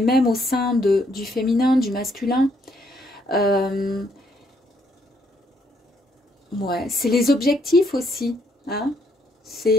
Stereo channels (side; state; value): both; normal; correlation 0.71